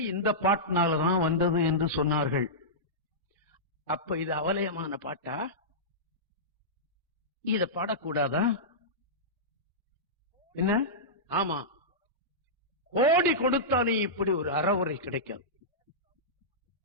இந்த பாட்டினாலதான் வந்தது என்று சொன்னார்கள். அப்ப இது அவலயமான பாட்டா? இத பாடக்கூடாதா? என்ன? ஆமா, கோடி கொடுத்தாலும் இப்படி ஒரு அறவுரை கிடைக்காது.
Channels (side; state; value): both; normal; correlation -0.15